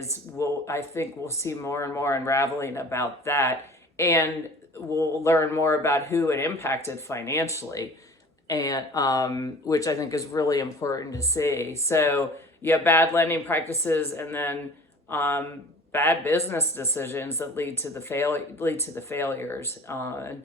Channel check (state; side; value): normal; both; correlation 0.45